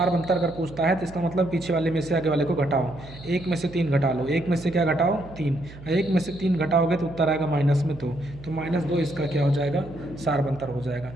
अगर पूछता है तो इसका मतलब पीछे वाले में से आगे वाले को घटाओ, 1 में से 3 घटा लो, 1 में से क्या घटाओ? 3, 1 में से 3 घटाओगे तो उत्तर आएगा माइनस में 2, तो -2 इसका क्या हो जाएगा? सारबंतर हो जाएगा।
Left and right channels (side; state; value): right; noise; hum, 16 dB below the sound